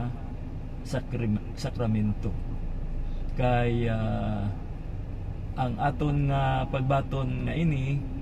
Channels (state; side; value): identical; both; correlation 1.00